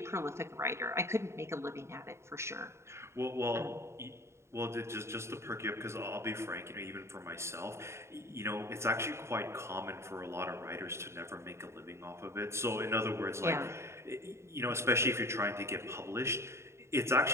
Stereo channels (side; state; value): left; late; 0.13 ms